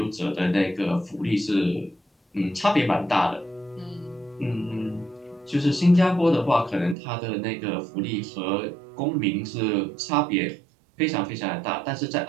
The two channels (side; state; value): left; drops out; at 7.0 s